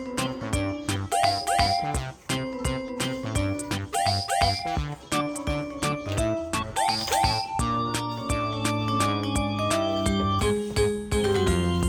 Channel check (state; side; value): identical; both; correlation 1.00